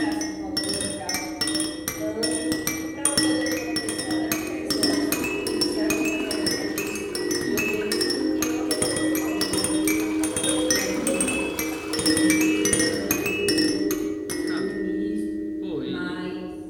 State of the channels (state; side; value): identical; both; correlation 1.00